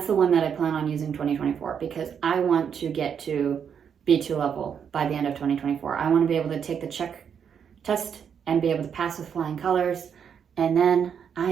the one that I plan on using 2024, because I want to get to B2 level by the end of 2024. I want to be able to take the Czech test and be able to pass with flying colors, and then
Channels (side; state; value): left; quieter; 7.6 dB